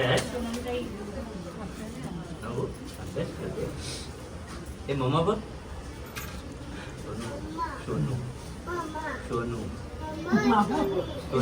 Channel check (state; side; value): identical; both; correlation 1.00